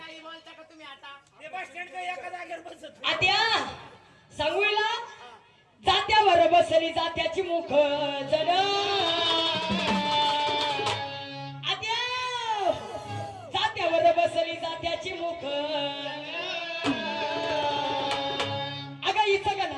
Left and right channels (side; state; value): both; identical; correlation 1.00